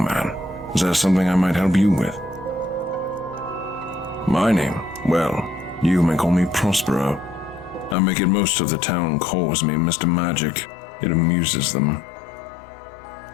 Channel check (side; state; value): right; drops out; at 8.0 s